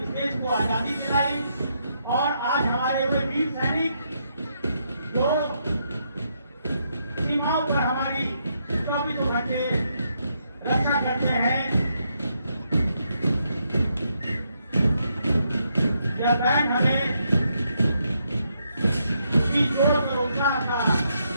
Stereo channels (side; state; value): both; inverted; correlation -0.78